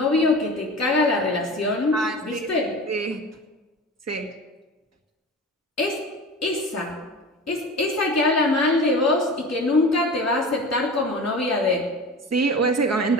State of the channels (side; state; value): both; normal; correlation 0.33